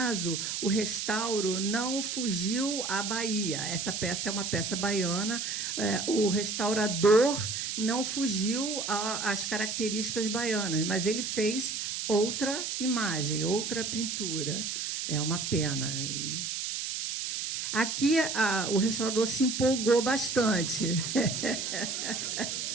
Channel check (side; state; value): right; noise; hiss, 3 dB below the sound